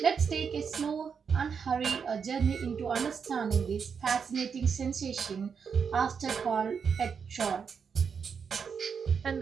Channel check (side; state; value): left; quieter; 6.4 dB